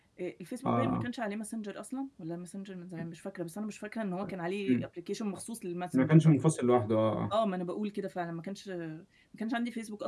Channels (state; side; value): identical; both; correlation 1.00